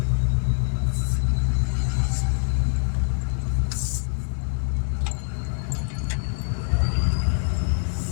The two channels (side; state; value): right; silent; digital silence